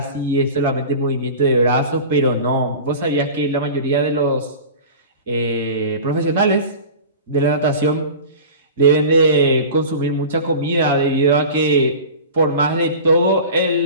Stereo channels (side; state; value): both; inverted; correlation -0.36